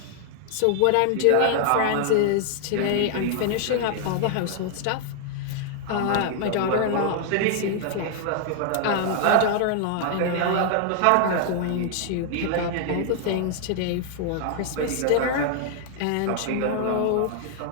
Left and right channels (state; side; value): different; both; correlation 0.00